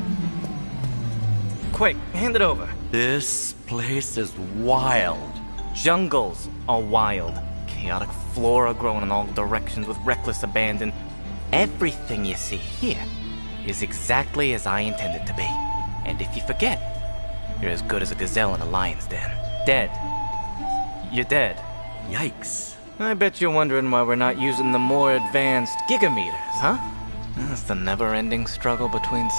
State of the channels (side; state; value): both; inverted; correlation -1.00